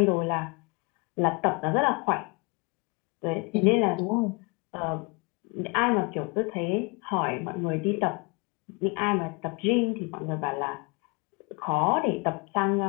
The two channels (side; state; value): right; quieter; 30.2 dB